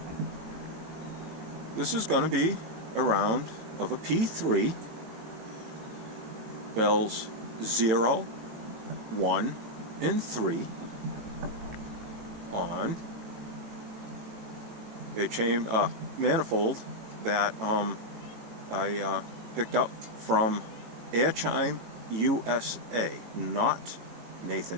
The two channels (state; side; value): late; left; 18 ms